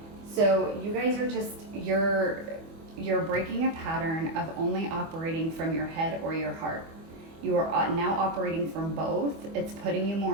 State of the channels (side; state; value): left; late; 25 ms